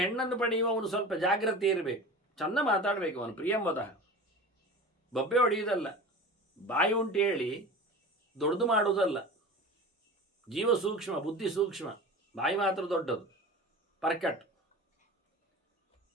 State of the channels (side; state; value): both; normal; correlation 0.34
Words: ಹೆಣ್ಣನ್ನು ಪಡೆಯುವವನು ಸ್ವಲ್ಪ ಜಾಗ್ರತೆ ಇರಬೇಕು, ಚೆಂದ ಮಾತಾಡಬೇಕು. ಅವನು ಪ್ರಿಯಂವದ, ಬಬ್ಬೆ ಹೊಡೆಯುವುದಲ್ಲ, ಬಾಯಿ ಉಂಟು ಹೇಳಿ ದೊಡ್ಡದು ಮಾಡುವುದಲ್ಲ. ಜೀವ ಸೂಕ್ಷ್ಮ, ಬುದ್ಧಿ ಸೂಕ್ಷ್ಮ, ಬಾಯಿ ಮಾತ್ರ ದೊಡ್ಡದು, ಪರ್ಕಟ್.